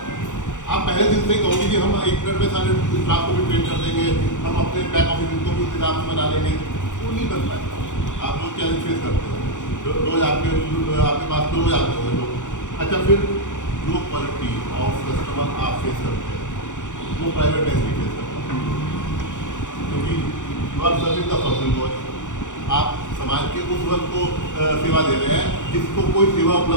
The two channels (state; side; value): late; right; 0.86 ms